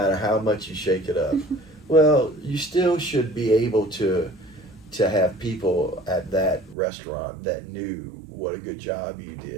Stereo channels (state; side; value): drops out; left; at 6.8 s